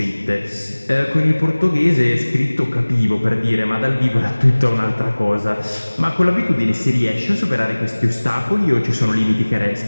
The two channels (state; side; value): inverted; both; correlation -1.00